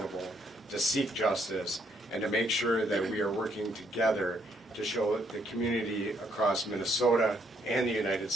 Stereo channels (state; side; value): normal; both; correlation 0.71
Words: to seek justice, and to make sure that we are working together to show the community across Minnesota and the United